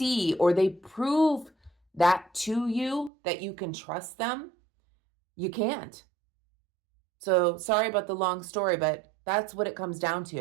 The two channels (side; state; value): left; drops out; at 3.1 s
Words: or they prove that to you that you can trust them. You can't. So sorry about the long story, but that's what it comes down